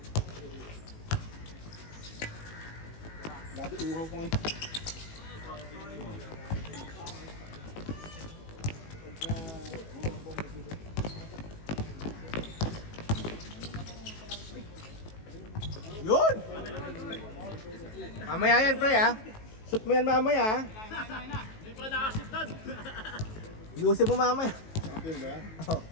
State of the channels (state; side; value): late; right; 19 ms